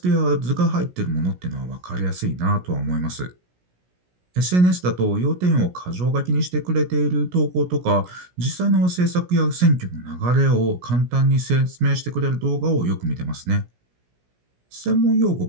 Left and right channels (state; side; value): late; left; 17 ms